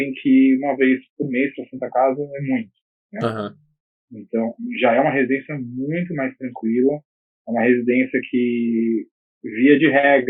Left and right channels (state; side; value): identical; both; correlation 1.00